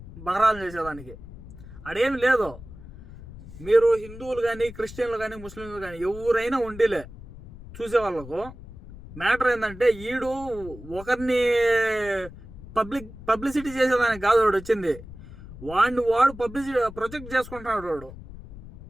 బహరాలు చేసేదానికి. అడేమి లేదు. మీరు హిందువులు కానీ క్రిస్టియన్లు కానీ ముస్లింలు కానీ ఎవరైనా ఉండిలే చూసేవాళ్ళకు మ్యాటర్ ఏంటంటే, ఈడు ఒకరిని పబ్లిసిటీ చేసేదానికి కాదు వాడు వచ్చింది, వాడు పబ్లిసిటీ ప్రొజెక్ట్ చేసుకుంటున్నాడు వాడు.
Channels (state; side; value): noise; left; rumble, 16 dB below the sound